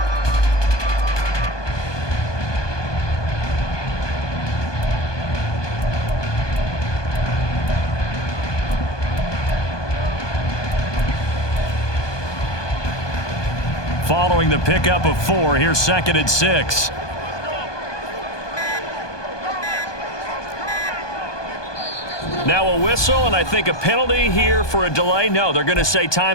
Following the pickup of 4, here's 2nd and 6. Now a whistle, and I think a penalty here for a delay. No, they're going to say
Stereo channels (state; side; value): late; right; 1.2 ms